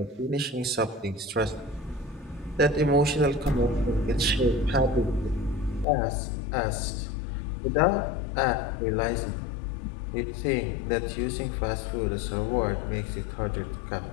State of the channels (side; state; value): right; drops out; at 5.9 s